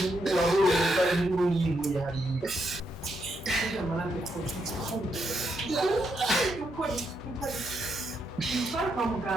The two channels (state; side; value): normal; both; correlation 0.80